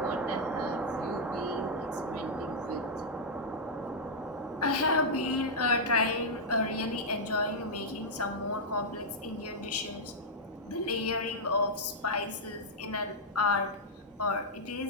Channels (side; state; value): both; normal; correlation -0.06